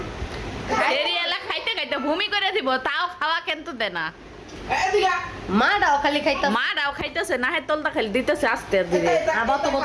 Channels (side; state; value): both; identical; correlation 1.00